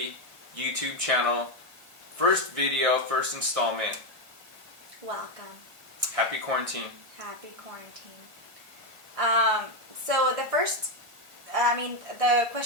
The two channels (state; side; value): late; left; 1.6 ms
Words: YouTube channel. First video, first installment. Welcome. Happy quarantine. Happy quarantine. So the